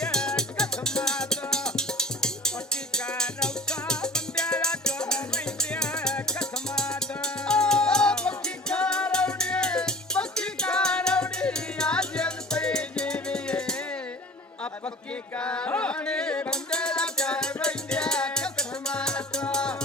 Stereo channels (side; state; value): both; normal; correlation 0.42